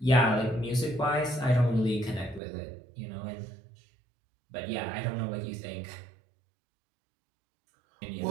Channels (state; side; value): drops out; left; at 2.4 s